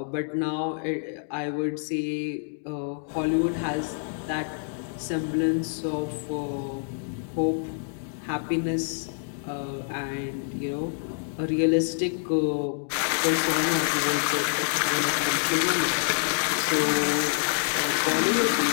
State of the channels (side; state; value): right; silent; digital silence